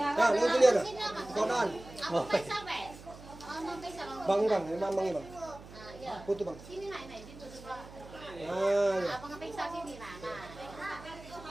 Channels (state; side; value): noise; right; hum, 17 dB below the sound